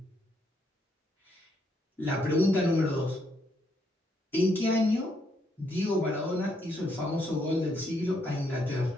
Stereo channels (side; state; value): both; normal; correlation 0.74